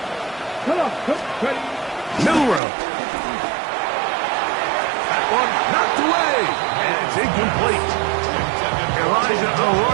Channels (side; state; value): left; drops out; at 2.6 s